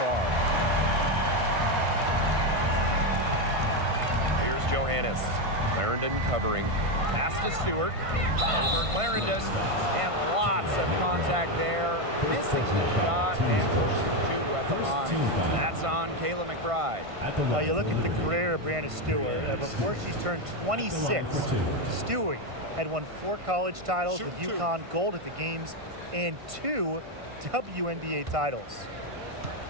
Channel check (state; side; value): late; left; 1.5 ms